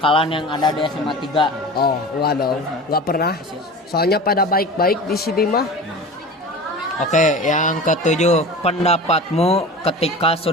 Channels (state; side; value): normal; both; correlation 0.34